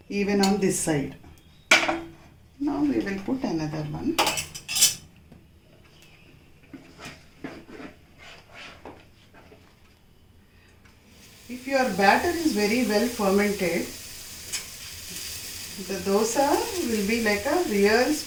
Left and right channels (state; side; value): identical; both; correlation 1.00